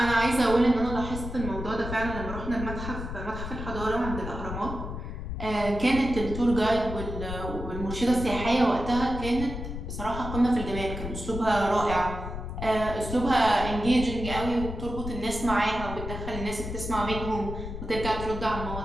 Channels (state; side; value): noise; left; rumble, 7 dB below the sound